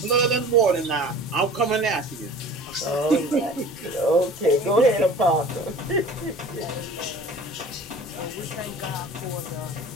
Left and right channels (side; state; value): both; normal; correlation 0.43